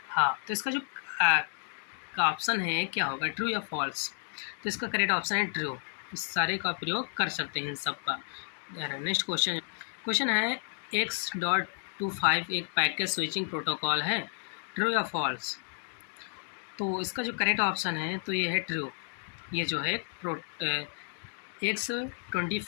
हाँ, तो इसका जो का ऑप्शन है क्या होगा? ट्रू या फॉल्स? तो इसका करेक्ट ऑप्शन है ट्रू। इस सारे का प्रयोग कर सकते हैं इन सब का। नेक्स्ट क्वेश्चन है X.25 एक पैकेट स्विचिंग प्रोटोकॉल है। ट्रू या फॉल्स? तो इसका जो करेक्ट ऑप्शन है तो ये है ट्रू। ये जो है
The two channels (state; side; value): silent; right; 55 dB below the other